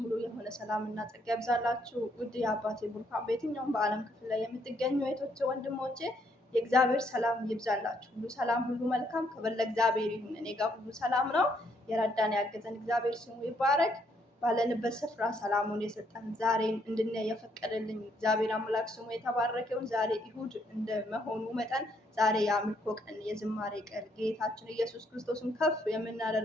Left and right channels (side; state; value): both; normal; correlation 0.72